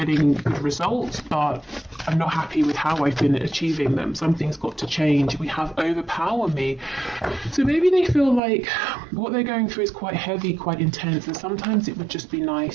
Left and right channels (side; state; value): left; drops out; at 8.4 s